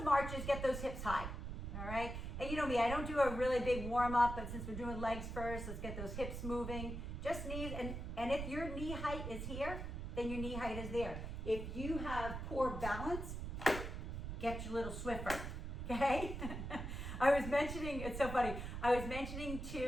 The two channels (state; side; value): noise; right; rumble, 5 dB below the sound